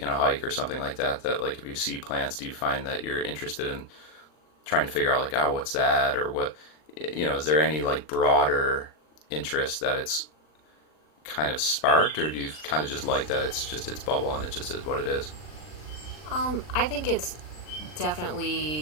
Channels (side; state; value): right; late; 39 ms